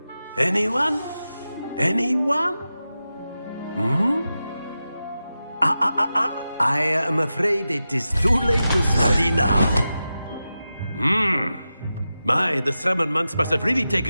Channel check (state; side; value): inverted; both; correlation -0.92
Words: Anyone? Anyone? I am afraid it is too late to study now. My, the summer months must have really